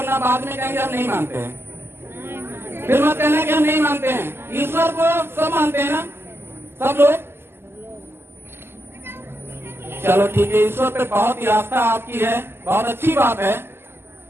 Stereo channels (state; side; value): late; left; 0.12 ms